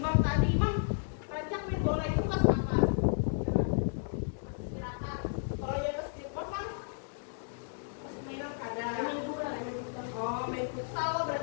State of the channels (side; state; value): right; silent; digital silence